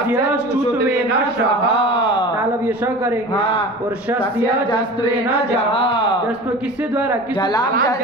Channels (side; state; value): both; normal; correlation 0.36